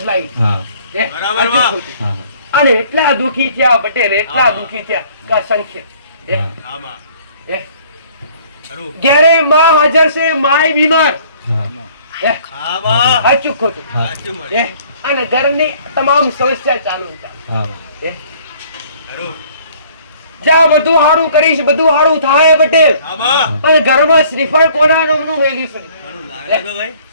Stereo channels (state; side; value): inverted; both; correlation -0.57